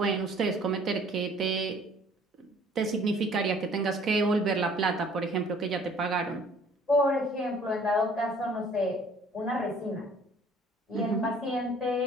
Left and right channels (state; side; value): normal; both; correlation 0.55